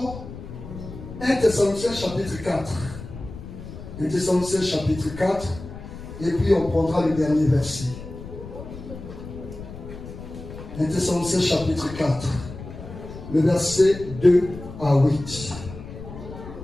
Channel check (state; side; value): noise; left; rumble, 12 dB below the sound